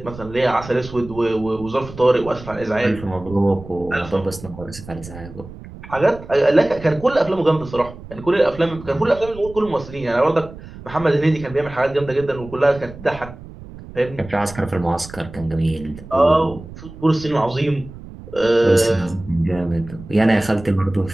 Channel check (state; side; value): noise; right; rumble, 16 dB below the sound